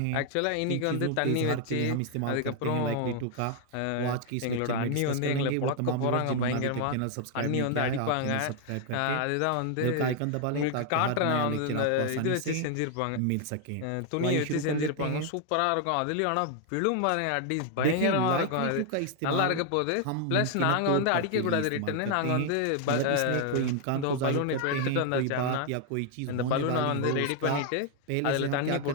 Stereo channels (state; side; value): different; both; correlation 0.00